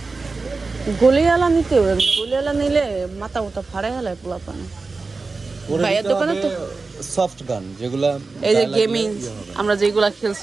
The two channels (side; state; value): left; quieter; 4.0 dB